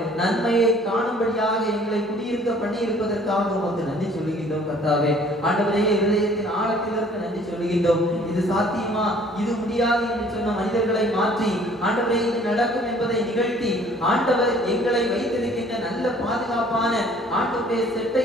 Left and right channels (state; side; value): normal; both; correlation 0.55